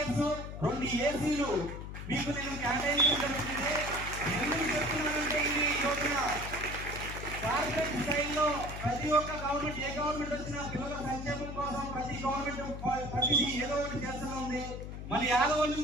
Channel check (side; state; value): left; noise; hum, 8 dB below the sound